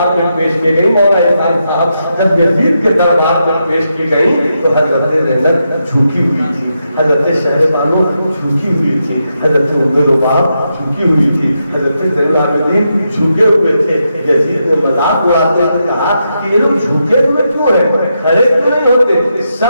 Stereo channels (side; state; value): both; inverted; correlation -0.84